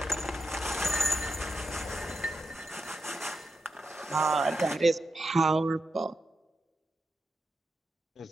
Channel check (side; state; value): both; normal; correlation 0.86